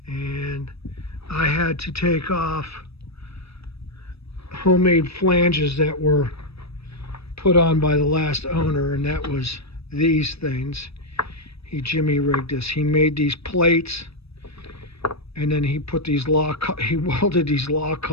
And I had to take off homemade flanges that were put on by the last owner, and that was these things. He jimmy rigged this. He made these plates, and then he put these he welded these lock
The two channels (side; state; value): right; late; 0.78 ms